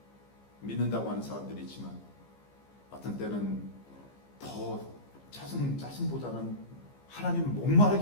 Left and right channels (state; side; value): late; right; 15 ms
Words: 믿는다고 하는 사람들이 있지만 어떤 때는 더 짜증보다는 하나님을